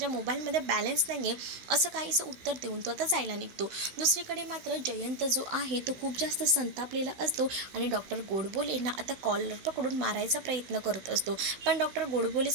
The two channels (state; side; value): late; left; 16 ms